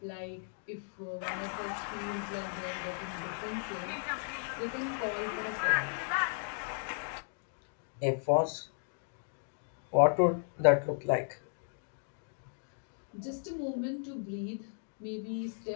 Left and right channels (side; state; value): right; silent; digital silence